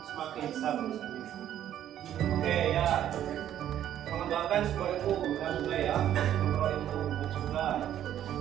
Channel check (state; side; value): quieter; left; 11.1 dB